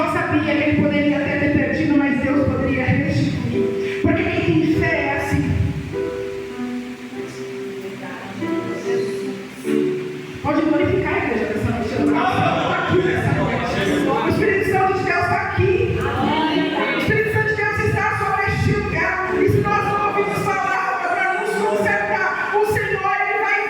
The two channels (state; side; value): identical; both; correlation 1.00